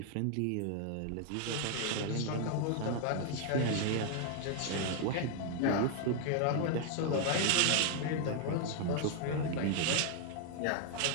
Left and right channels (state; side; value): different; both; correlation 0.00